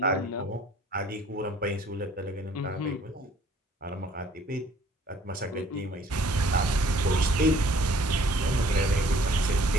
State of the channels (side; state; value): both; normal; correlation 0.56